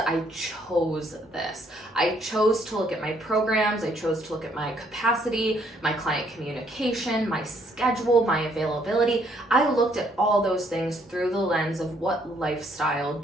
chose this. I chose to look at my programs. I chose to look at my capacity, my client communication, my schedule, my availability. I looked at all those things through the lens of what lifestyle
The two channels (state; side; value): normal; both; correlation 0.68